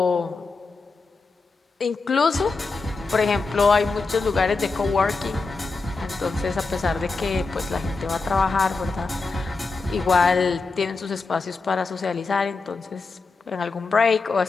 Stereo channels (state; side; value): quieter; right; 4.1 dB